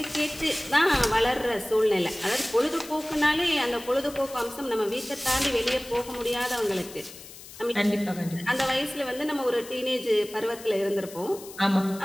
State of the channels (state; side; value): noise; left; hiss, 16 dB below the sound